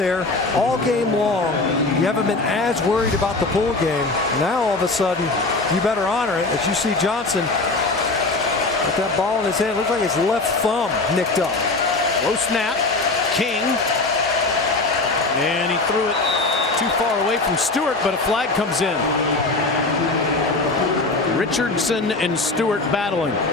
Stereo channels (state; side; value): quieter; right; 3.4 dB